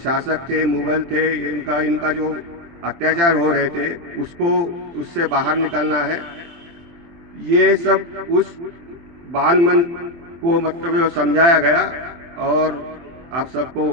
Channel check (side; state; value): left; late; 24 ms